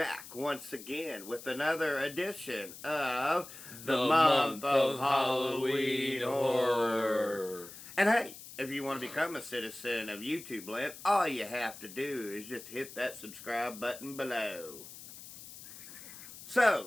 once again with another edition of the The month month of of Halloween Halloween horror. horror. And hey, if you want to become a citizen of YouTube land, all you have to do is just hit that subscribe button below.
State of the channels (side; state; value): left; noise; hiss, 15 dB below the sound